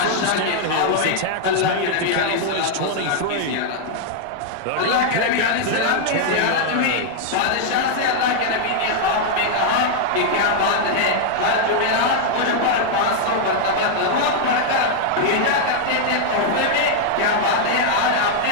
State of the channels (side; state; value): both; different; correlation -0.01